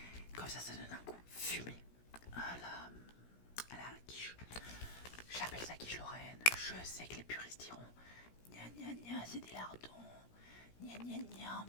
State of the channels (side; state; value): right; late; 17 ms